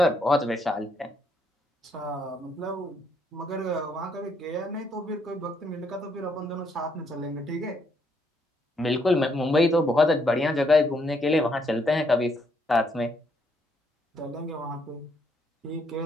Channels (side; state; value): both; normal; correlation 0.73